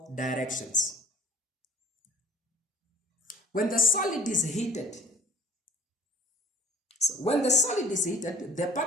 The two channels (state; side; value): normal; both; correlation 0.51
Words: directions. When the solid is heated, the